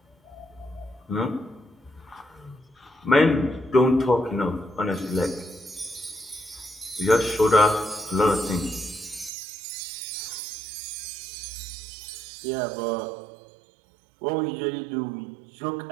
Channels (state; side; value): drops out; left; at 9.3 s